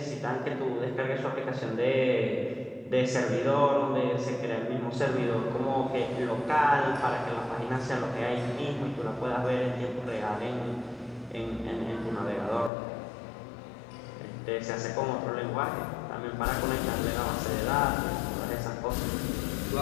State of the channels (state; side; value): drops out; right; at 12.7 s